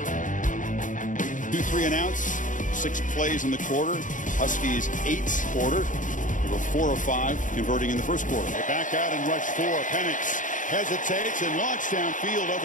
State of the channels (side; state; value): right; late; 0.37 ms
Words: 2-3 and outs. 6 plays in the quarter. Huskies 8 quarter. They were 4 of 5 converting in the first quarter. They back out and rush 4. Penix hesitates and launched downfield